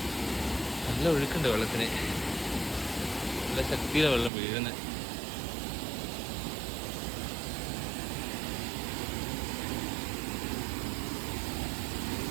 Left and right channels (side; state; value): left; drops out; at 4.3 s